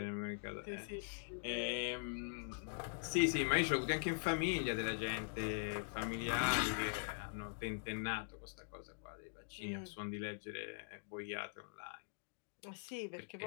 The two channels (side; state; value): right; silent; digital silence